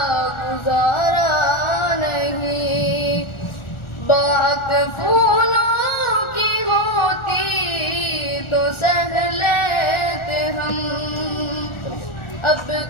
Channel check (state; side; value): late; right; 1.4 ms